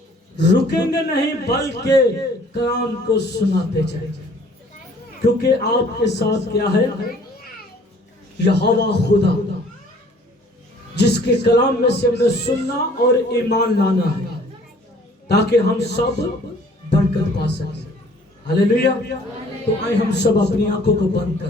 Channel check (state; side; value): normal; both; correlation 0.55